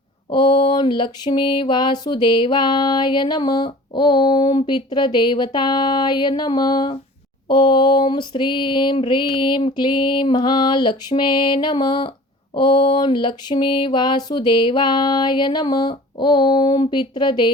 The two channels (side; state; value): both; normal; correlation 0.44